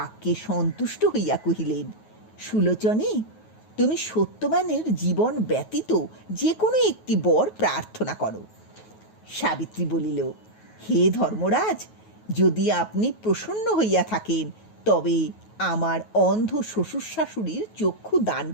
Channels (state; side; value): late; right; 9.3 ms